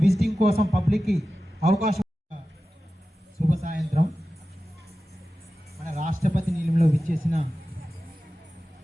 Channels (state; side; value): normal; both; correlation 0.94